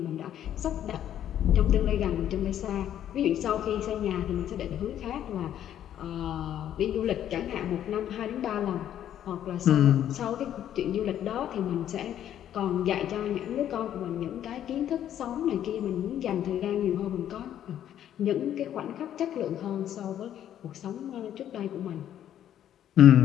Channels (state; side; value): quieter; right; 10.8 dB